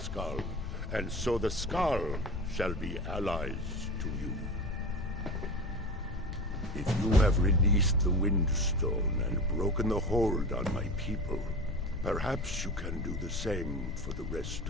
and so the Skaal shall be allies to you. If you have released the Windstone and broken the hold on my people, perhaps you can do the same for the rest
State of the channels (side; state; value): left; noise; rumble, 6 dB below the sound